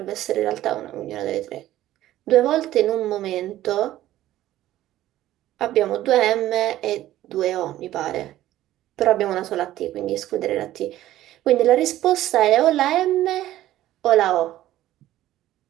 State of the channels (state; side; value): quieter; left; 14.2 dB